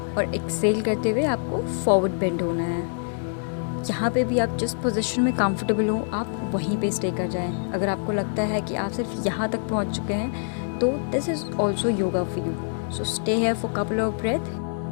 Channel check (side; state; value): right; silent; 62 dB below the other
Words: और एक्सेल करते हुए आपको फॉरवर्ड बेंड होना है. यहाँ पे भी आप जिस पोजीशन में कंफर्टेबल हो आप वहीं पे स्टे कर जाएं. अगर आपको लगता है कि आप सिर्फ यहाँ तक पहुँच चुके हैं तो this is also yoga for you. So stay here for a couple of breaths.